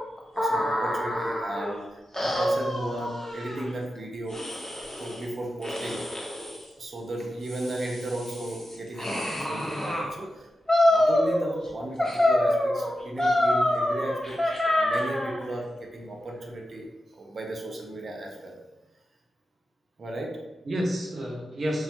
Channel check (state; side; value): normal; both; correlation 0.90